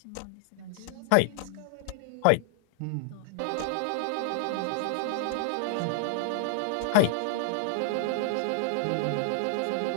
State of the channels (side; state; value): both; different; correlation -0.01